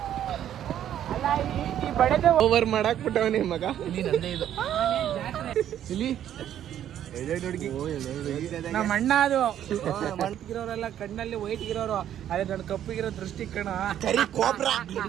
ಈ ಬಡದೆ ಓವರ್ ಮಾಡಾಕ್ ಬಿಟ್ಟವನೇ ಮಗ. ಇಲ್ಲಿ ಇದು ಇಲ್ಲಿ ನಮ್ಮ ಅಣ್ಣ ಅದು ಮಂಟಿಗಿರೋರೆಲ್ಲ ಕಣ್ಣಲ್ಲಿ ವೈಟ್ ಇರೋರು, ಅದೇ ನನ್ನ ಕಪ್ಪಿಗಿರೋ ದೃಷ್ಟಿ ಕಣ.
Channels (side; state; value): left; quieter; 10.8 dB